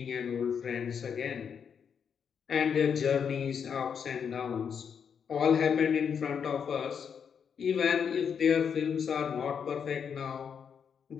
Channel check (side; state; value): right; quieter; 7.1 dB